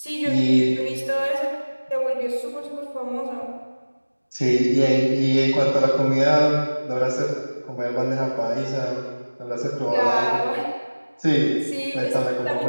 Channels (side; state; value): both; inverted; correlation -1.00